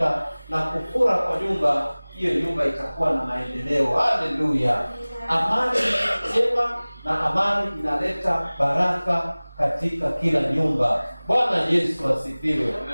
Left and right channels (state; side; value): inverted; both; correlation -1.00